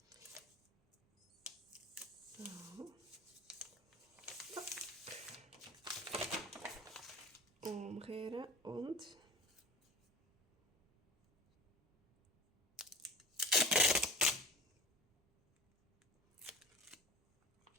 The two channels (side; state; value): both; normal; correlation 0.35